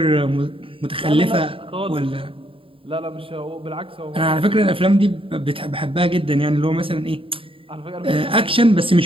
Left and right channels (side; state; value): left; late; 0.26 ms